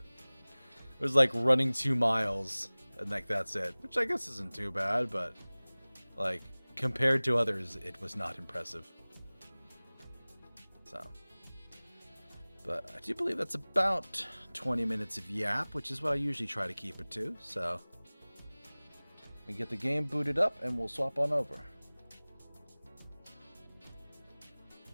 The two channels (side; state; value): both; inverted; correlation -1.00